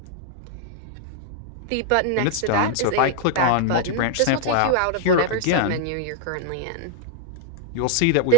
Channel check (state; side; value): different; both; correlation 0.00